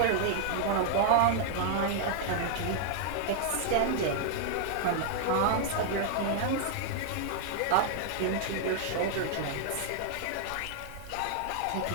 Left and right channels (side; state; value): both; different; correlation -0.01